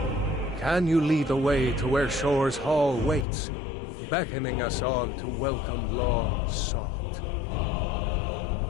Can you lead the way to where Shore's Hall waits, beckoning us on to welcome long sought?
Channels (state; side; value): drops out; right; at 3.2 s